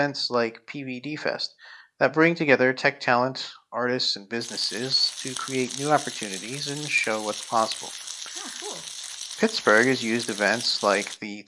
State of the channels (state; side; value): identical; both; correlation 1.00